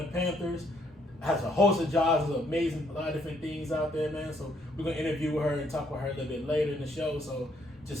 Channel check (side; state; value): both; normal; correlation 0.69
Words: Panthers. Has a host of jobs, is amazing, a lot of different things out there, man. So we're gonna interview her and talk with her a little bit later in the show. So